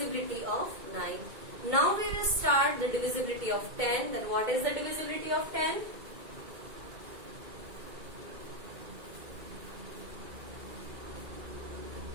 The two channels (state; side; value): late; left; 2.2 ms